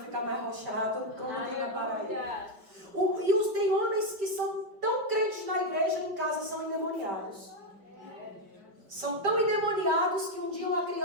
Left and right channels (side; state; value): left; late; 5.0 ms